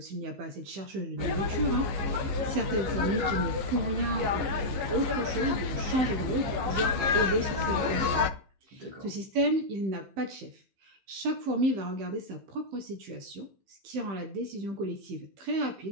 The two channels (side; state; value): left; late; 15 ms